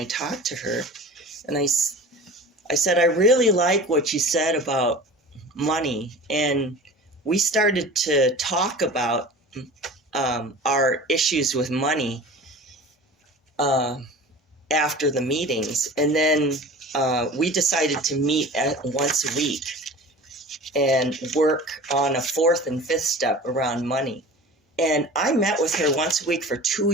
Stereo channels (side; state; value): both; normal; correlation 0.39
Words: talked to her, and I said, I really like what you said about money. And we started to talk about our issues with money after the meetings. And then we decided to meet once a week and work on a fourth and fifth step around money. And I met with her once a week for 2